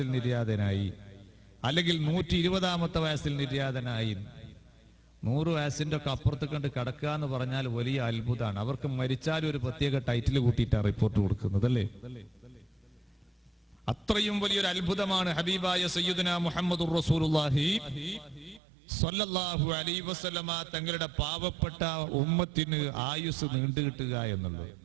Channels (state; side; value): drops out; left; at 18.6 s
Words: നിര്യാതനായി, അല്ലെങ്കിൽ 120ാമത്തെ വയസ്സിൽ നിര്യാതനായി. 100 വയസ്സിന്റെ ഒക്കെ അപ്പുറത്ത് കണ്ട് കിടക്കുക എന്ന് പറഞ്ഞാൽ വലിയ അത്ഭുതമാണ്. അവർക്ക് മരിച്ചാലും ഒരു പ്രത്യേക ടൈറ്റിൽ കൂട്ടിയിട്ടാണ് റിപ്പോർട്ട് കൊടുക്കുന്നത്, അല്ലേ? അത്രയും വലിയൊരു അത്ഭുതമാണ് ഹബീബായ സയ്യിദുനാ മുഹമ്മദുർ റസൂലുള്ളാഹി സ്വല്ലല്ലാഹു അലൈഹി വസല്ലമ തങ്ങളുടെ പാവപ്പെട്ട ഉമ്മത്തിന് ആയുസ് നീണ്ടുകിട്ടുക എന്നുള്ളത്.